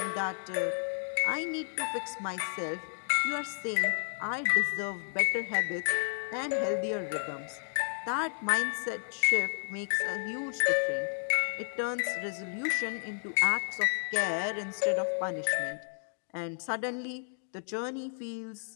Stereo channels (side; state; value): right; silent; digital silence